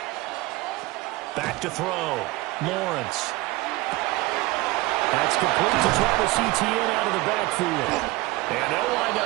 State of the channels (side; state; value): left; quieter; 20.3 dB